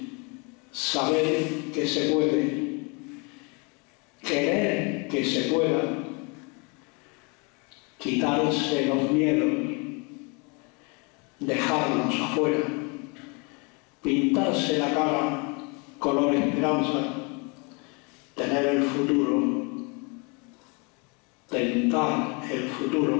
saber que se puede, querer que se pueda, quitarse los miedos, dejarlos afuera, pintarse la cara color esperanza, tener el futuro, tentar el futuro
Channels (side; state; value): right; quieter; 31.6 dB